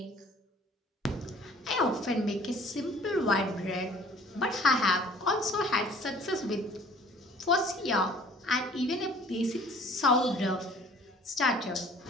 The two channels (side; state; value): both; normal; correlation 0.53